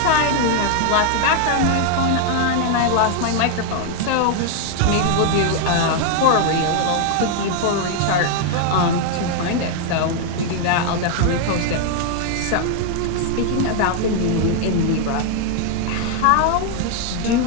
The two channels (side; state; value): both; different; correlation 0.00